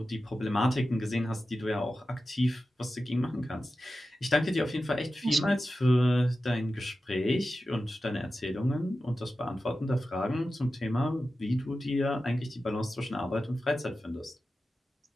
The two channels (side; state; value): both; normal; correlation 0.93